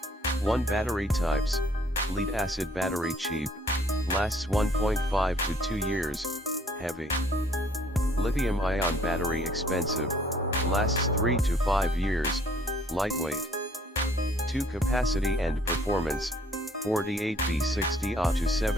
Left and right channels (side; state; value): both; normal; correlation 0.60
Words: 1 Battery types, lead-acid battery cheap, lasts 1.5 to 2 years, heavy. Lithium-ion battery expensive, lasts 3 to 5 years, lightweight. 2 Capacity and performance, 48 V 60 Ah to